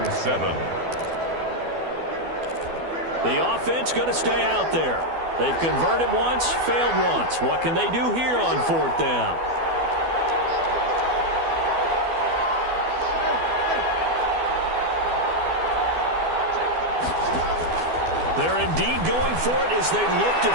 7. The offense going to stay out there. They've converted once, failed once. What can they do here on 4th down? They're indeed going for it as they look to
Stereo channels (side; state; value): left; late; 12 ms